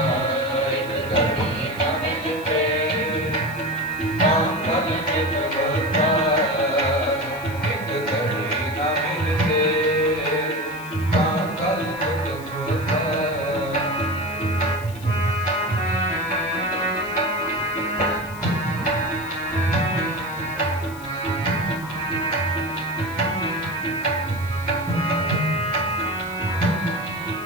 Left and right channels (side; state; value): left; noise; hiss, 19 dB below the sound